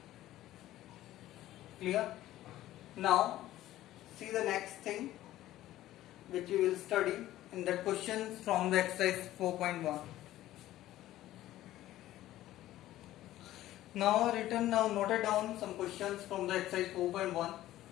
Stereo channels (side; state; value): right; quieter; 14.6 dB